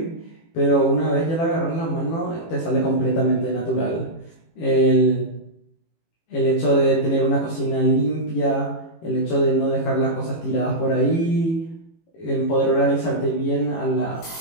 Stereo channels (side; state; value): right; late; 18 ms